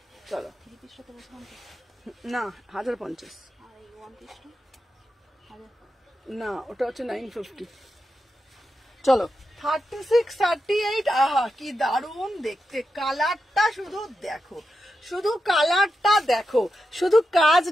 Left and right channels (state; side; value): normal; both; correlation 0.88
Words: চলো না 1050 না, ওটা হচ্ছে 950। চলো 36, 38। আহা কি দারুণ দেখতে, কালারটা শুধু দেখো, শুধু কালারটা দেখো, শুধু